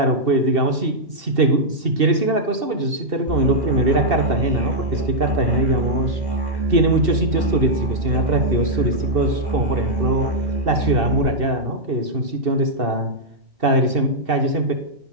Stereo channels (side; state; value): left; late; 2.7 ms